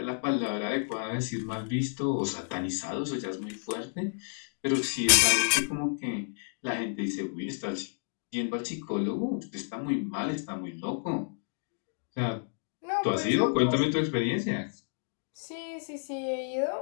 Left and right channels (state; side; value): silent; right; digital silence